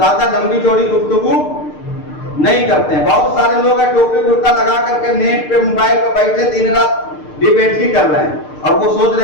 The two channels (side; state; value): right; late; 6.6 ms